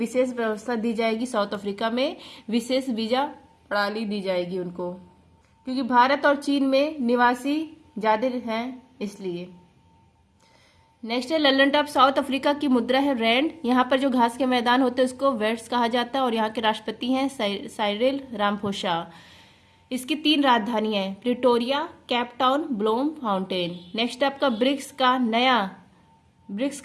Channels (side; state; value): both; identical; correlation 1.00